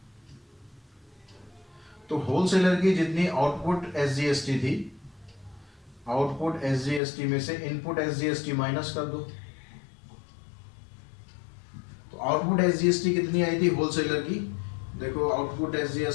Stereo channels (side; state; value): right; drops out; at 7.0 s